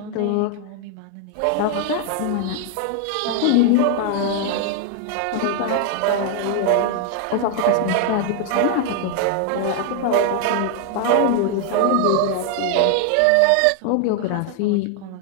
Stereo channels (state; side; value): different; both; correlation 0.00